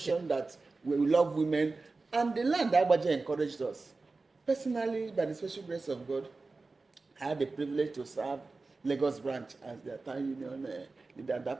that we love women, and the land Abajah encouraged us. Personally, by the special grace of God, I had the privilege to serve Lagos branch as their town union leader at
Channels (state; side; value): quieter; left; 3.7 dB